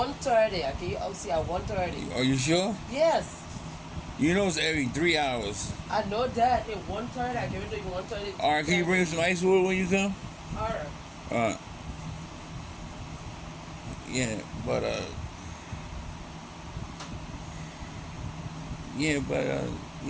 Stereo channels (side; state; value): both; identical; correlation 1.00